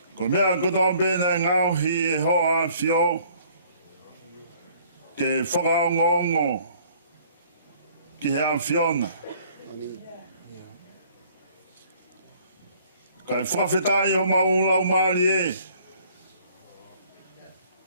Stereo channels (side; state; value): both; inverted; correlation -0.58